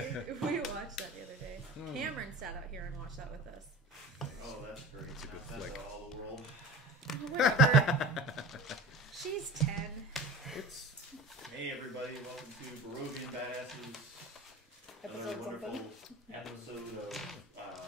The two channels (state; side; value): normal; both; correlation 0.38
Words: We watched that the other day. Cameron sat out here and watched that with us. Oh, that's great. It's a good That's flick. all the world. Whatever. She's 10. It's Hey everybody, welcome to Barovian Badassess. Another Episode wonderful something. episode